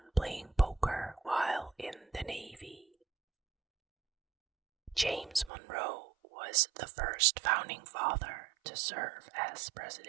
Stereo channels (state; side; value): drops out; left; at 5.5 s